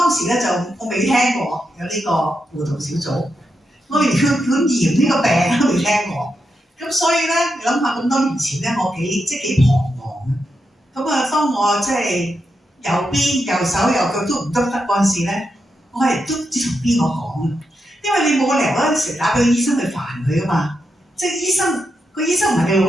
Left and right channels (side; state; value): both; normal; correlation 0.85